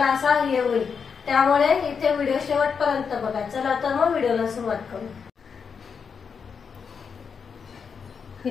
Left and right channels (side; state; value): right; quieter; 6.1 dB